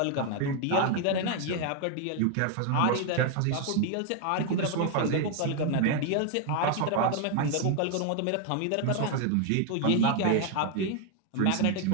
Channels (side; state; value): both; different; correlation 0.01